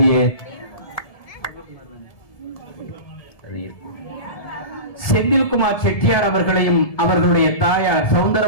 செந்தில்குமார் செட்டியார் அவர்களையும் அவர்களுடைய தாயார்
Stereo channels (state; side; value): late; right; 1.7 ms